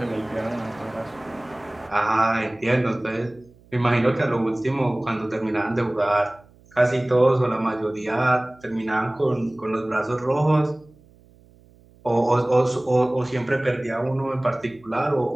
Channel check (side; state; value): right; noise; hum, 28 dB below the sound